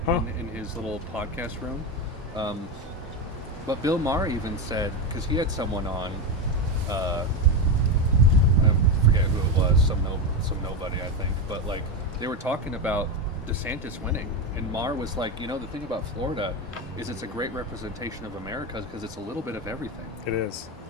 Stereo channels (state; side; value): normal; both; correlation 0.13